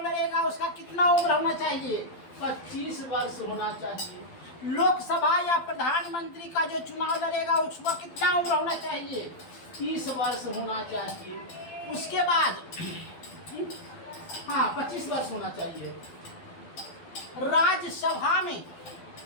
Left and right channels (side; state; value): right; late; 12 ms